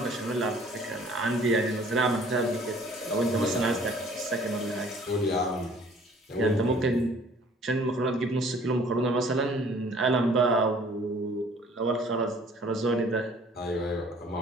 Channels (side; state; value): both; normal; correlation 0.54